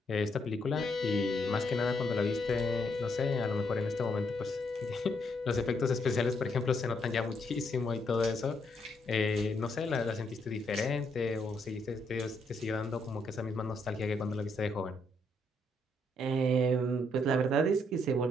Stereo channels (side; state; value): both; normal; correlation 0.75